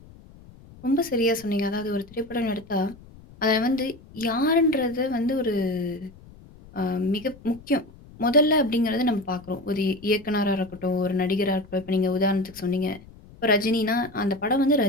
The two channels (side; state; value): left; noise; rumble, 22 dB below the sound